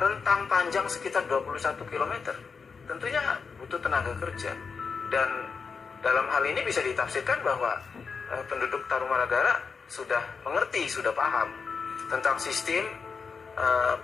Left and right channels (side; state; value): right; quieter; 5.3 dB